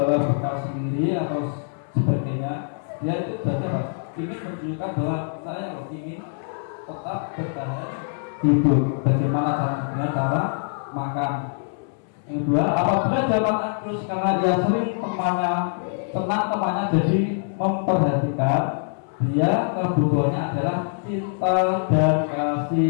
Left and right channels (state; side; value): silent; right; 63 dB below the other